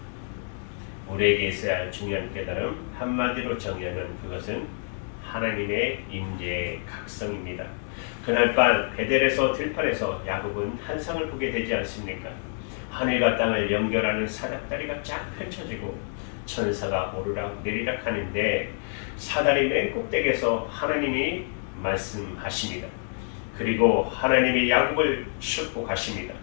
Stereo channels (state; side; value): silent; right; 56 dB below the other